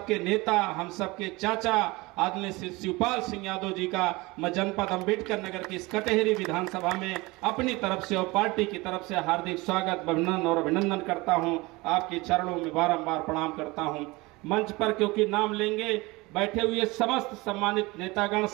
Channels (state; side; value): quieter; left; 22.9 dB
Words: नेता, हम सबके चाचा आदरणीय शिवपाल सिंह यादव जी का मैं जनपद अंबेडकर नगर की इस कटेहरी विधानसभा में अपनी तरफ से और पार्टी की तरफ से हार्दिक स्वागत, अभिनंदन करता हूं। आपके चरणों में बारंबार प्रणाम करता हूं। मंच पर क्योंकि नाम लेंगे, बैठे हुए समस्त सम्मानित नेतागण,